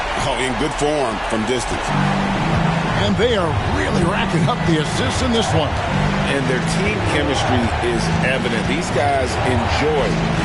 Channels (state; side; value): identical; both; correlation 1.00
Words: Oh, in good form from distance. And they are really racking up the assists in this one. And their team chemistry is evident. These guys enjoy